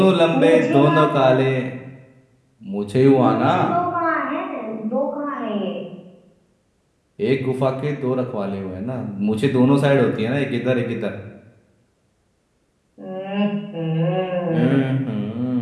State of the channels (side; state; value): both; identical; correlation 1.00